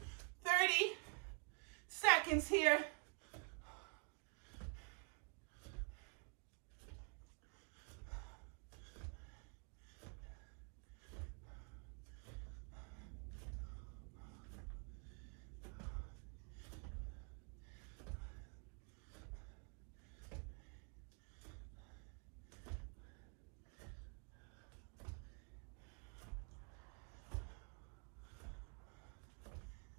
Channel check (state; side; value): quieter; left; 34.7 dB